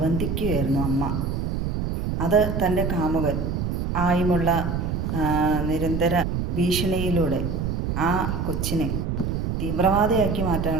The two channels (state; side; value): noise; right; rumble, 1 dB below the sound